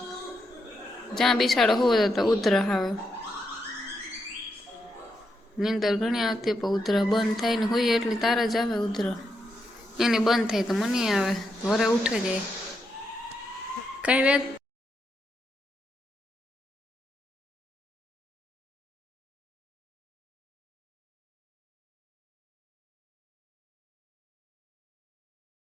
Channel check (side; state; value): both; normal; correlation 0.82